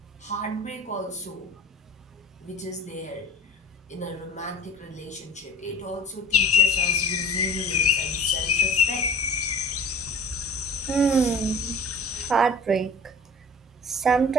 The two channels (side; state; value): both; normal; correlation 0.42